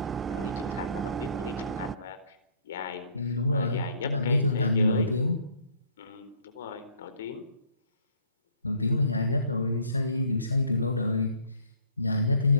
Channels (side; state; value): both; inverted; correlation -0.61